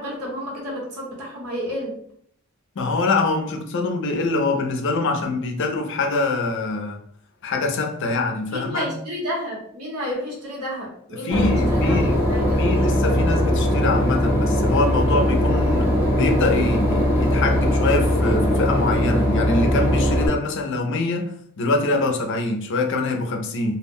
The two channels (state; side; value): normal; both; correlation 0.51